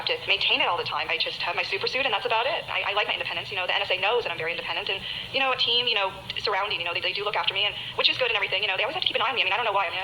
to maintain it all the time. I just have my super suit, and that's about it. I like my independence. You know, the NSA knows that I'm very independent, and, you know, a team, you know, surrounding, you know, they do look after me, and which is good and everything. You know, they always have to keep an eye on me. I mean, I don't know why. I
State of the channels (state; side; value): identical; both; correlation 1.00